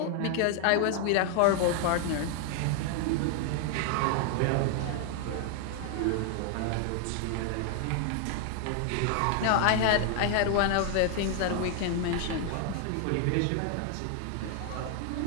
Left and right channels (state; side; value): different; both; correlation 0.00